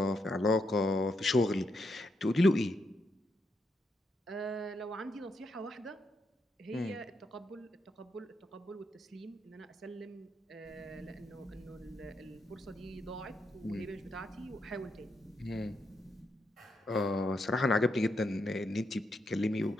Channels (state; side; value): normal; both; correlation 0.80